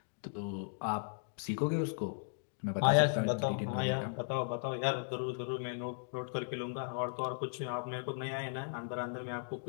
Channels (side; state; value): right; silent; digital silence